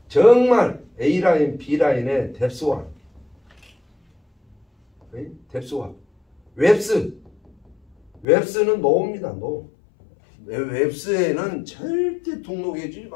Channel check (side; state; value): right; drops out; at 8.2 s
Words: 정말 A라인, B라인의 뎁스화. 뎁스화. 웹스는 노입니다. 노. 웹스에는 절대 등록해 주지